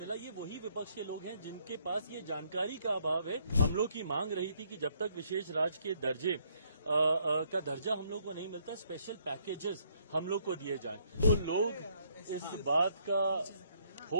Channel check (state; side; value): inverted; both; correlation -0.69